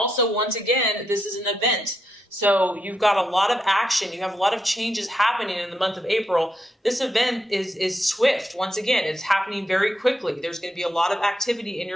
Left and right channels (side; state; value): both; normal; correlation 0.82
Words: once again, this is an event. So you've got a lot of action. You have a lot of changes happening in the month of April. This event is swift. Once again, it's happening very quickly. There's going to be a lot of activity in